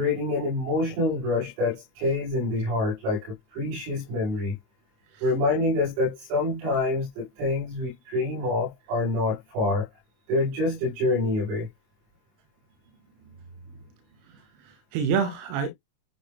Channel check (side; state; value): left; late; 28 ms